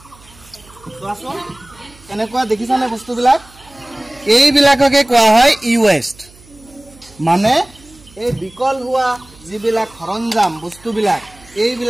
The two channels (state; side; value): noise; right; hum, 25 dB below the sound